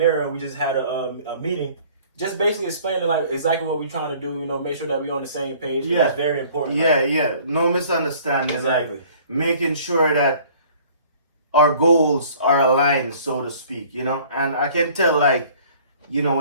and we just had a meeting. Just basically explaining like exactly what we're trying to do, make sure that we're on the same page. Yeah. It's very important. Yeah. No misunderstanding. Exactly. Like, making sure that our goals are aligned, so to speak, And I can tell, like,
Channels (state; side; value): inverted; both; correlation -0.52